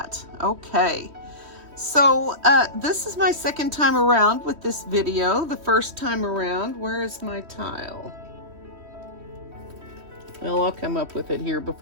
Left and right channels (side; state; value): left; late; 3.1 ms